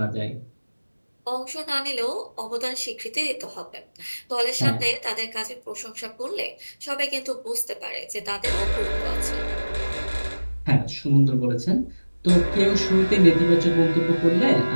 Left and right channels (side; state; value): both; inverted; correlation -1.00